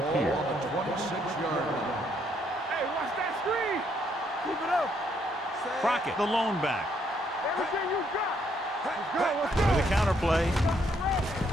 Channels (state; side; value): normal; both; correlation 0.71